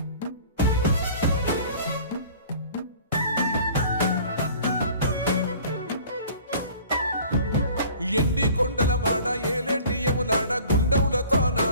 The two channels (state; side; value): inverted; both; correlation -0.48